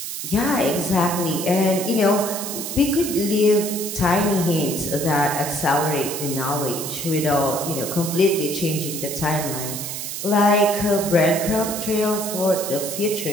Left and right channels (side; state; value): right; noise; hiss, 6 dB below the sound